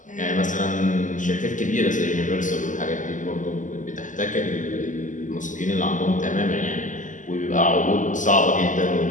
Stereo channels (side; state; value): right; late; 0.37 ms